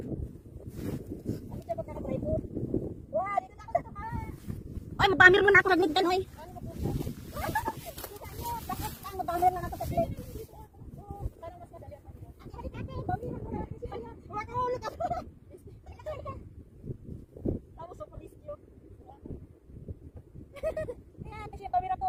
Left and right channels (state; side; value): identical; both; correlation 1.00